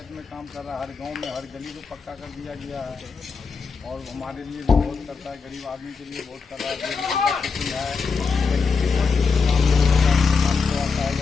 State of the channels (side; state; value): right; quieter; 5.0 dB